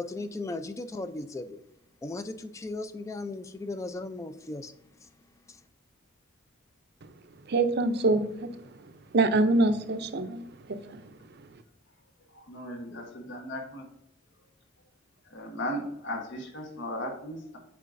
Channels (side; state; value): both; normal; correlation 0.38